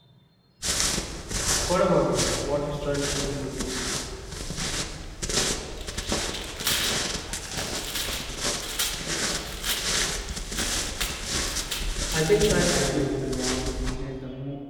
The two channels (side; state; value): both; identical; correlation 1.00